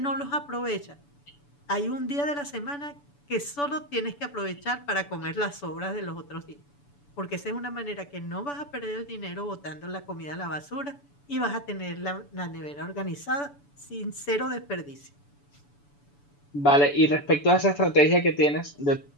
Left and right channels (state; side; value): late; right; 7.0 ms